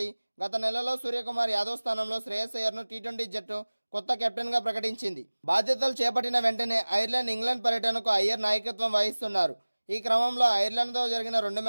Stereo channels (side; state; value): both; inverted; correlation -1.00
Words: గత నెలలో సూర్యకుమార్ యాదవ్ స్థానంలో శ్రేయస్ అయ్యర్ను టీ20 జట్టు కొత్త కెప్టెన్గా ప్రకటించింది. బాధ్యతలు చేపట్టిన వెంటనే ఐర్లాండ్, ఇంగ్లాండ్ పర్యటనకు అయ్యర్ నాయకత్వం వహిస్తున్నారు. ఈ క్రమంలో ఐర్లాండ్తో జరిగిన 2